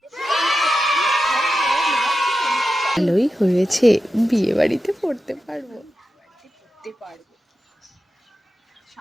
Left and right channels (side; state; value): both; normal; correlation 0.91